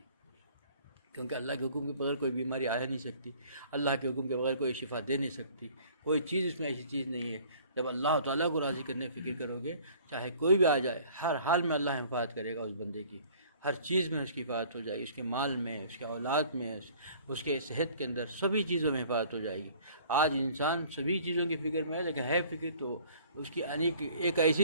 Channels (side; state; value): both; inverted; correlation -0.52